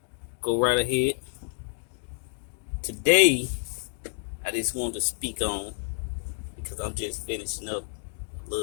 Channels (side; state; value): right; silent; 59 dB below the other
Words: go right ahead. Today, I just wanted to speak on, because I'm just finishing up a